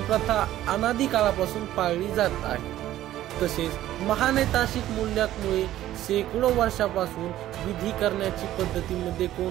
अनादी काळापासून पाळली जात आहे। तसेच महानैतिक मूल्यामुळे शेकडो वर्षापासून विधी करण्याची पद्धतीमध्ये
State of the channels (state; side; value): quieter; left; 13.6 dB